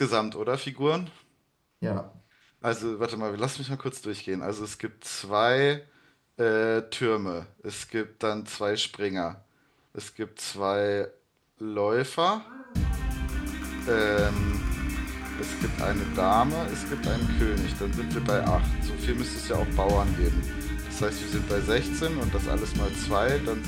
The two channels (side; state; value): both; identical; correlation 1.00